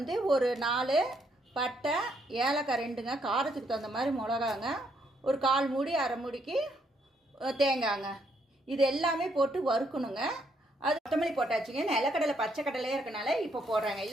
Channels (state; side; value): normal; both; correlation 0.73